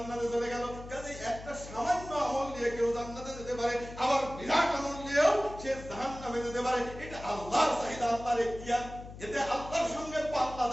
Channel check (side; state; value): left; noise; hum, 14 dB below the sound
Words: চলে গেল। কাজে একটা সামান্য আমল দিয়ে কেউ জান্নাতে যেতে পারে, আবার বিরাট আমল দিয়েও সে জাহান্নামে যেতে পারে। এটা আল্লাহর চাহিদা, আল্লাহর ইখতিয়ার। এতে আল্লাহর সঙ্গে পাল্লা